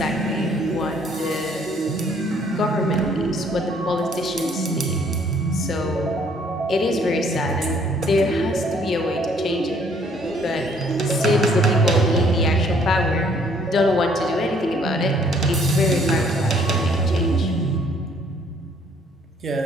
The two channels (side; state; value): both; normal; correlation 0.62